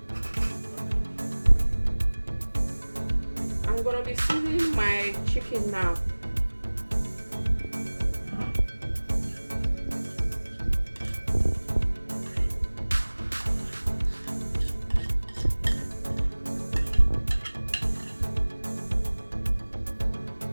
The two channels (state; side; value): inverted; both; correlation -1.00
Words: I'm going to be seasoning my chicken now.